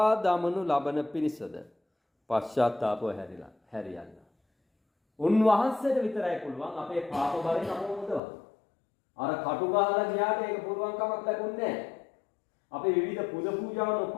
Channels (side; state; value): right; drops out; at 8.2 s